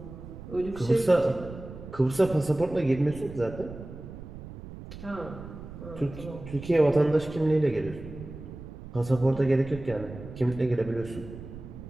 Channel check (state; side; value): noise; right; rumble, 13 dB below the sound